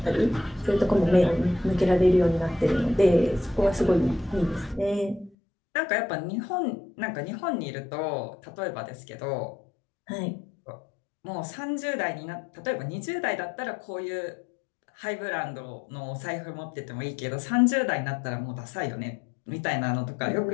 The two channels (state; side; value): drops out; right; at 5.3 s